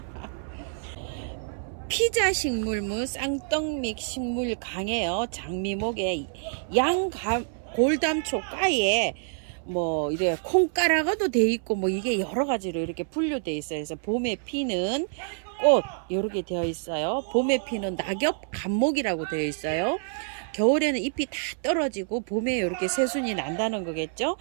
피자 식물무 쌍떡믹 식물 강해요. 장미목에 골담초 가에 이래 콩가라가도 돼 있고 이게 여러 가지로 이렇게 분류돼 있어요. 그래서 봄에 피는 꽃 이렇게 되어 있어요. 봄에 피는 낙엽 감목이라고 되어 있어요. 겨울에는 잎이 다 떨어지고 봄에 이렇게 새순이 난다는 거겠죠.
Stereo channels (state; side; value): silent; left; 60 dB below the other